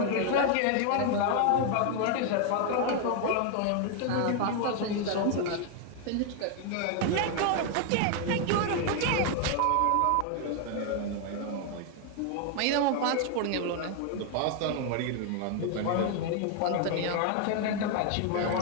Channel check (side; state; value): both; different; correlation 0.01